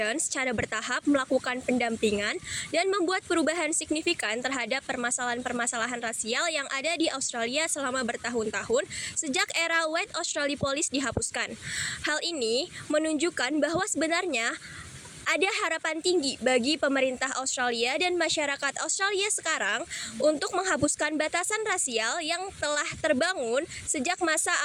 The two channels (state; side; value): identical; both; correlation 1.00